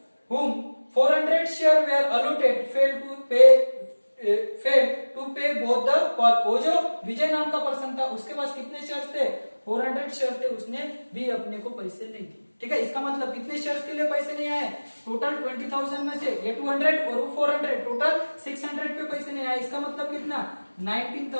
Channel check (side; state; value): both; inverted; correlation -1.00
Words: whom 400 share were allotted fail to pay both the call. वो जो विजय नाम का पर्सन था, उसके पास कितने शेयर थे, 400 शेयर थे, उसने भी अपने को पैसे नहीं दिए। ठीक है, इसका मतलब कितने शेयर्स के लिए पैसे नहीं आए, टोटल 20,000 में से ये 200 और वो 400, टोटल 600 पे पैसे नहीं आए। इसका मतलब कितना,